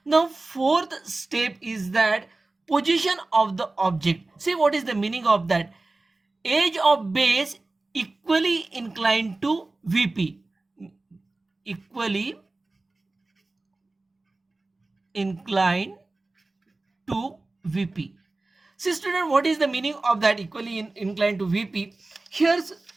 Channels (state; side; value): quieter; left; 3.2 dB